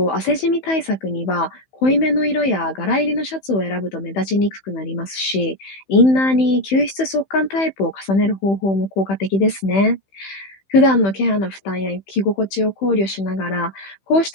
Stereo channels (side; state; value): right; late; 15 ms